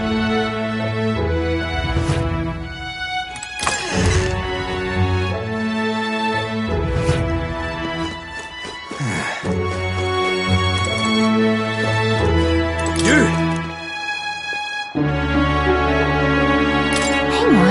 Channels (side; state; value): both; identical; correlation 1.00